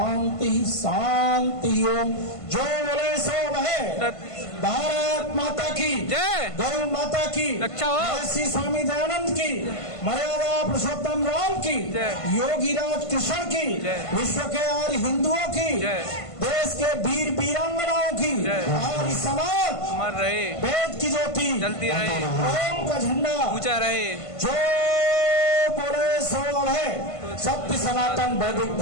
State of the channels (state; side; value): late; right; 1.5 ms